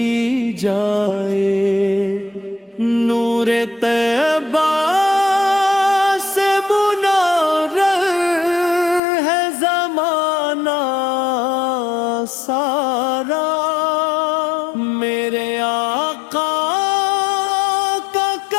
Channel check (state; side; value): drops out; right; at 9.0 s